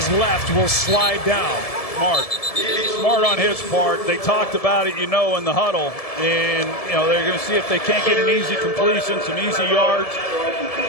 left will slide down. Smart on his part. They talked about it, in the huddle. And, they're going to see if they can't get an easy completion, some easy yards.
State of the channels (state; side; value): late; right; 1.7 ms